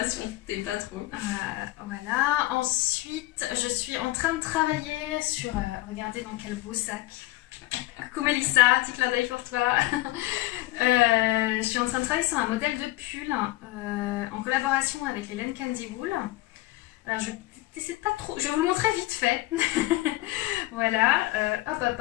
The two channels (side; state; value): right; quieter; 18.5 dB